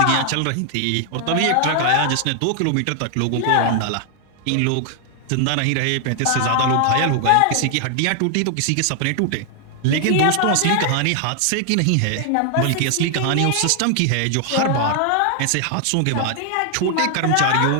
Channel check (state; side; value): different; both; correlation 0.00